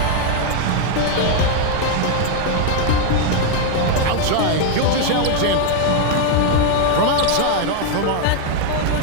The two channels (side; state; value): both; different; correlation 0.01